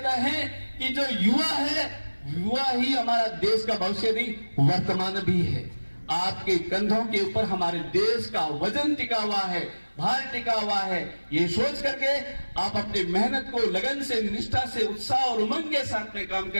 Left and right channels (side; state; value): both; inverted; correlation -1.00